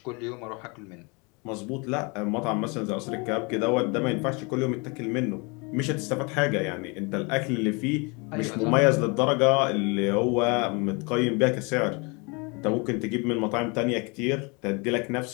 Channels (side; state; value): right; quieter; 30.2 dB